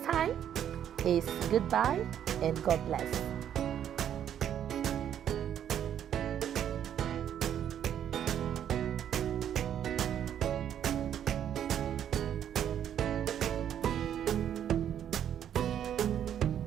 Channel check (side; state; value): left; quieter; 9.8 dB